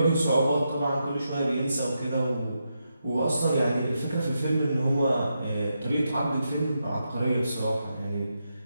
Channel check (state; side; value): inverted; both; correlation -0.85